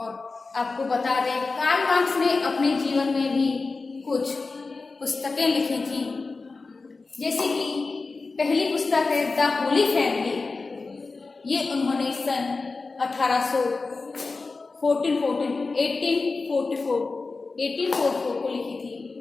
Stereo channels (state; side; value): quieter; right; 3.9 dB